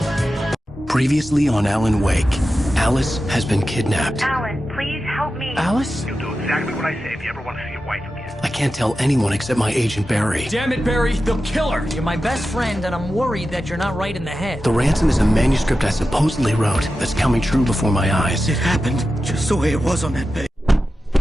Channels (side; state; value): both; normal; correlation 0.92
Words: Previously on Alan Wake, Alice has been kidnapped. Alan, please help me. Alice? You'll do exactly what I say if you ever want to see your wife again. I can't tell anyone except my agent Barry. Damn it, Barry, they'll kill her. You're my best friend, and I'm worried that you're not right in the head. The ransom is a manuscript I supposedly wrote that's coming true before my eyes. It happened just the way it was on that page.